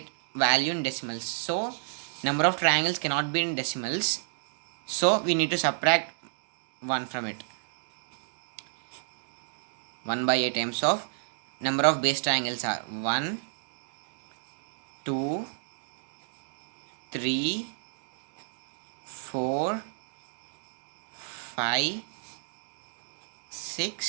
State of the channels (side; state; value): left; silent; digital silence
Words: value in decimals. So number of triangles cannot be in decimals. So we need to subtract 1 from it. 1 by 8 times of number of base triangles are 1, 2, 3, 4, 5,